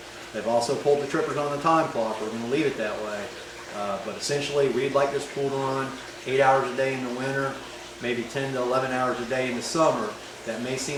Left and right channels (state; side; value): identical; both; correlation 1.00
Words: They've also pulled the trippers on the time clock. We're going to leave it that way. But essentially we'd like this pool to run 8 hours a day in the winter, maybe 10 to 11 hours a day in the summer. That may